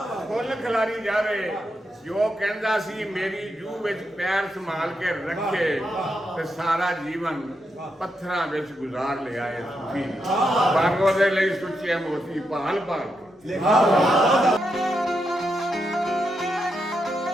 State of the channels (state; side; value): normal; both; correlation 0.83